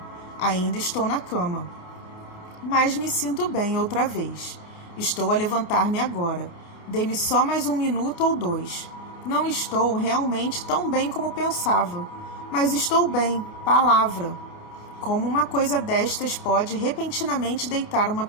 Ainda estou na cama. Mas me sinto bem outra vez. Estou a levantar-me agora. Dê-me só mais 1 minuto ou 2. Não estou realmente tão bem como pensava. Mas estou bem, palavra. Como uma coisa destas pode repentinamente deitar uma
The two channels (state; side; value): late; right; 28 ms